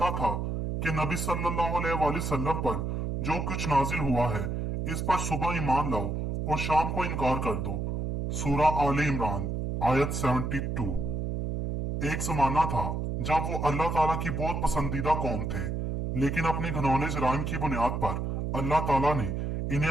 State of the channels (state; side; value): noise; right; hum, 2 dB below the sound